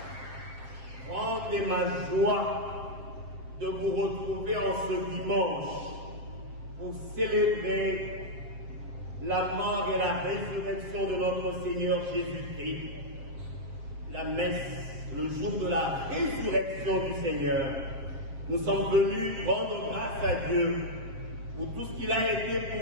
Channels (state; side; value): late; left; 7.5 ms